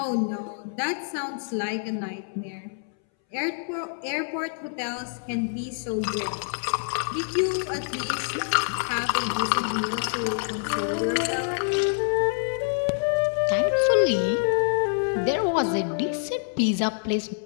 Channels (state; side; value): silent; right; 61 dB below the other